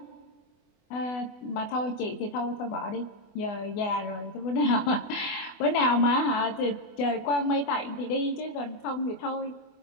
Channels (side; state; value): right; late; 24 ms